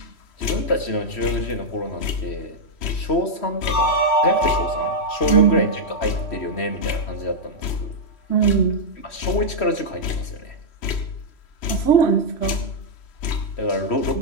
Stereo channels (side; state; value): right; late; 3.1 ms